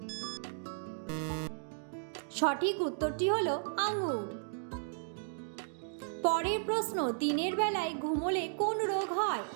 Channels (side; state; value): left; silent; digital silence